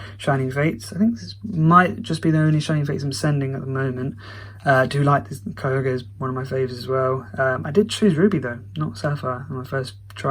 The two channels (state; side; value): identical; both; correlation 1.00